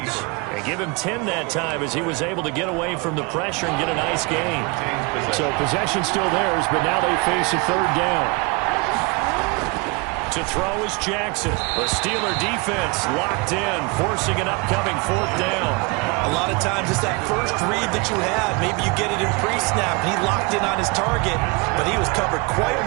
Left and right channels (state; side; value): quieter; left; 28.9 dB